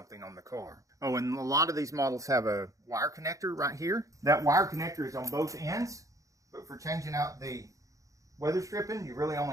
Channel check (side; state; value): left; late; 0.16 ms